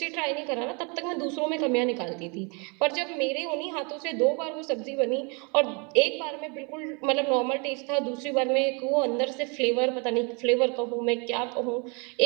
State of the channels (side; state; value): left; quieter; 32.7 dB